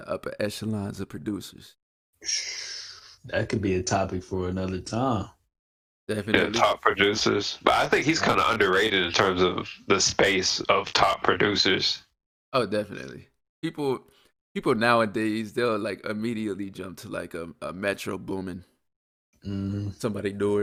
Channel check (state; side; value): identical; both; correlation 1.00